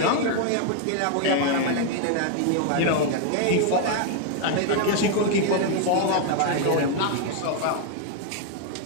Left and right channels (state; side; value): different; both; correlation 0.00